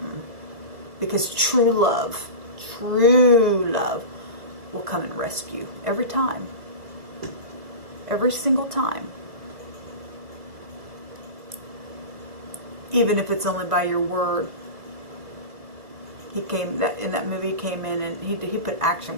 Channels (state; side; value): late; left; 2.2 ms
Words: Because true love will come and rescue every time. Every single time. Even if it's only by your word. He came, in that movie, he came in and he put action